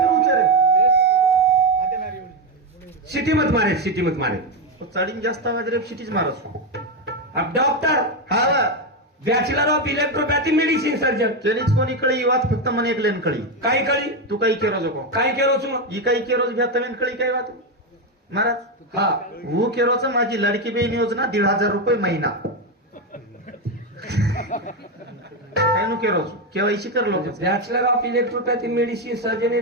करू रे सिटी मत मारे तो साडी जास्त आवाज रे सिटीज मारस अब डॉक्टर हा bachelor of electropathy medicine surgeon केनीच कोणी कळी ही बात फक्त मन एकलेन कळी काय कळी तू काही केरो जोको काय केलो छु ही काही केरोज घ्या तमेन कळी काय बात महाराज हा वो केरोच माझी लाडकी बहीण योजना 1,500 रुपये महिना काय नु केरोज केवायसी कर लोक bachelor of electropathy medicine surgeon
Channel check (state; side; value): normal; both; correlation 0.09